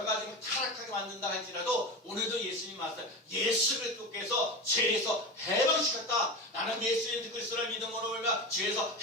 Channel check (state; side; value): normal; both; correlation 0.24